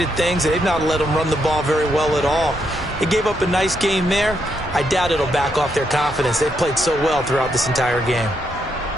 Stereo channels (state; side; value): normal; both; correlation 0.78